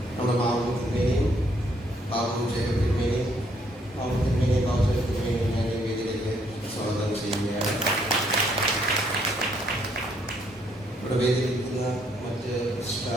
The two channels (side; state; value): both; normal; correlation 0.69